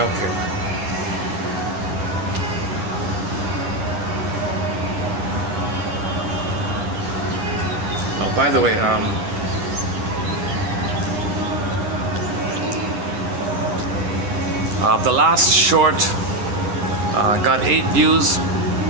okay. Oh, by the way, the last short got 8 views.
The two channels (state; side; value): late; left; 9.9 ms